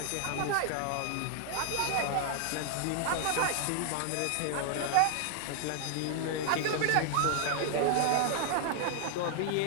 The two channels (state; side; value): different; both; correlation -0.01